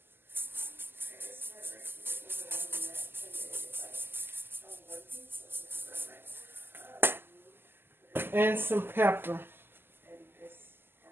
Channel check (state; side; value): late; left; 0.10 ms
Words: And some pepper.